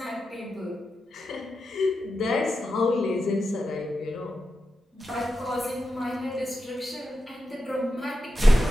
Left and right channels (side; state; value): both; normal; correlation 0.89